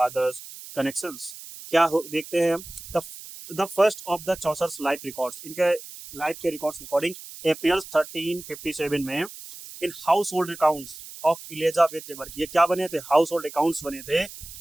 connections. क्या देखते हैं हम the first of the Chaucer's life records, इनके life के records according appears 1357 में in house hold accounts of Elizabeth de Burgh. ये क्या बने थे? हाउस होल्ड अकाउंट्स बने थे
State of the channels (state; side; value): noise; right; hiss, 14 dB below the sound